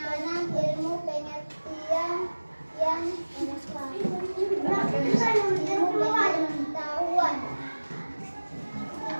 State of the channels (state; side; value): inverted; both; correlation -1.00